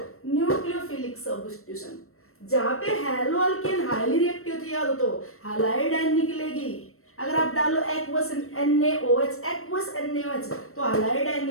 nucleophilic substitution। जहाँ पे हैलोएल्केन हाईली रिएक्टिव थी, याद हो तो हैलाइड आयन निकलेगी। अगर आप डालो एक्वस NaOH, एक्वस NaOH, तो हैलाइड आयन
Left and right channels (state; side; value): late; right; 0.63 ms